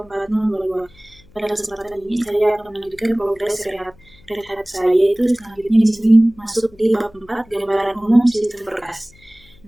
Pada kesempatan ini saya akan melanjutkan progres rehat saya, yaitu selanjutnya di sini masuk di bab 4 gambaran umum sistem berkas.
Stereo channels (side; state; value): left; noise; hum, 27 dB below the sound